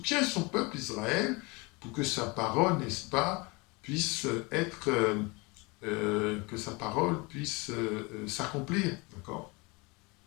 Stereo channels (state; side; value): quieter; right; 26.9 dB